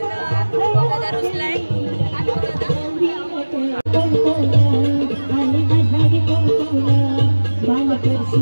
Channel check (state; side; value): inverted; both; correlation -1.00